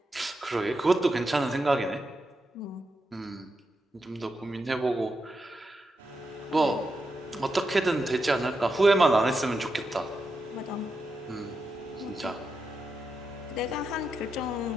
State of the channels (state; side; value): normal; both; correlation 0.86